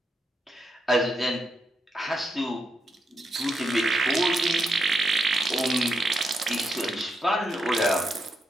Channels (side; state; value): both; normal; correlation 0.79